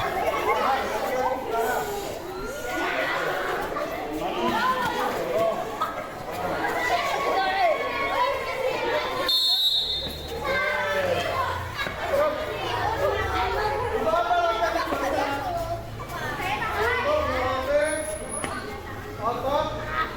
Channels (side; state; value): both; identical; correlation 1.00